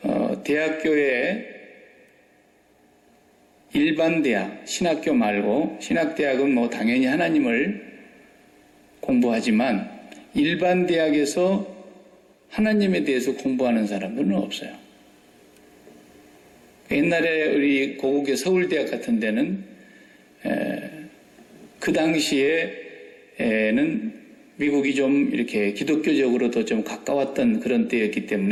대학교에 일반 대학, 신학교 말고, 신학대학은 당연히 하나님을 공부하지만 일반 대학에서 하나님에 대해서 공부하는 사람들은 없어요. 옛날에 우리 고국의 서울대학 같은 데는 그 당시에는 미국이 좀 이렇게 기독교적으로도 좀 가까웠던 그런 때였기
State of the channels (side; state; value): both; identical; correlation 1.00